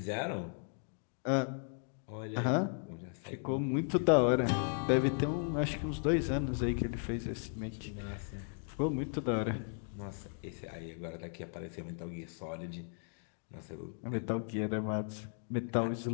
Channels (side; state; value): right; silent; 54 dB below the other